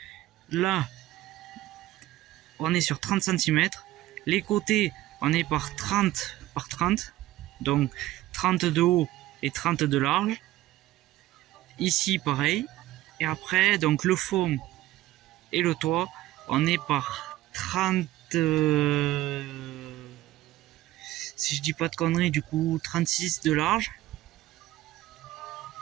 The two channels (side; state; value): left; quieter; 15.9 dB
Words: Là, on est sur 30 cm. Les côtés, on est par 30 par 30. Donc 30 de haut et 30 de large. Ici, pareil. Et après, donc le fond et le toit, on est par 30... si je dis pas de conneries, du coup 36 de large